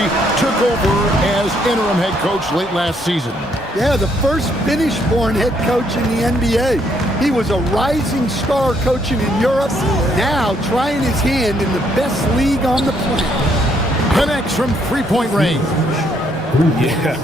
took over as interim head coach late last season. Yeah, the first Finnish-born head coach in the NBA. He was a rising star coaching in Europe, now trying his hand in the best league on the planet. Connects from three-point range.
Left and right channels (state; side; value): normal; both; correlation 0.70